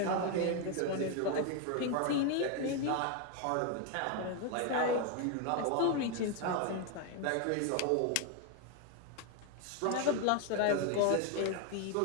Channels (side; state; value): both; different; correlation 0.01